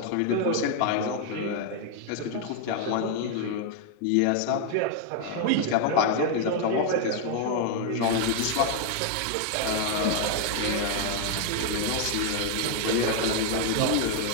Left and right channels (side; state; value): both; different; correlation 0.00